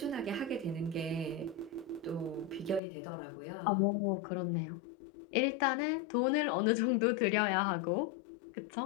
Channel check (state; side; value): drops out; right; at 2.8 s